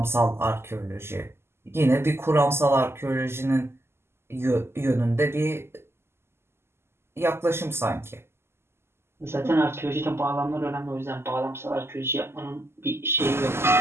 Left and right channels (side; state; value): left; late; 0.12 ms